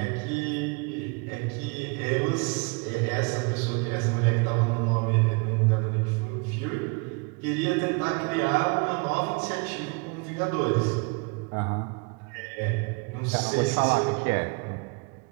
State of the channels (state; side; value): quieter; left; 31.7 dB